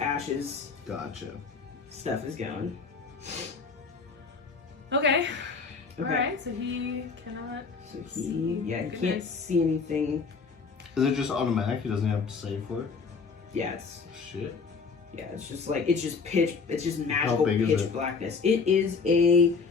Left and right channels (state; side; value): quieter; right; 5.0 dB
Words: Gotcha. stuff is going. Okay. Okay. Alright, so he cannot. So he can't Goodness. see anything. Is it just automatic? He doesn't have to save for it? Yeah, it's Shit. it's just magical big is pitch it? blackness. It is a